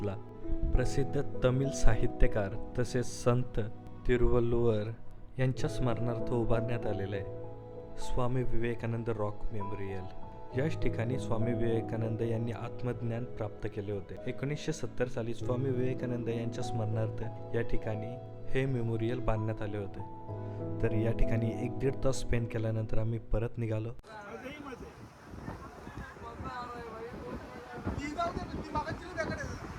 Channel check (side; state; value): both; identical; correlation 1.00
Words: प्रसिद्ध तमिळ साहित्यकार तसेच संत तिरुवल्लुवर यांच्या स्मरणार्थ उभारण्यात आलेला आहे. Swami Vivekananda rock memorial. याच ठिकाणी स्वामी विवेकानंद यांनी आत्मज्ञान प्राप्त केले होते. 1970 साली स्वामी विवेकानंद यांच्या स्मरणार्थ या ठिकाणी हे मेमोरियल बांधण्यात आले होते. तर या ठिकाणी 1-1.5 तास स्पेंड केल्यानंतर आम्ही परत निघालो.